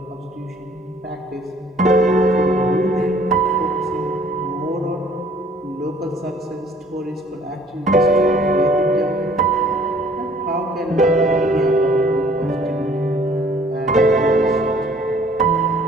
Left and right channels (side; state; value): both; normal; correlation 0.57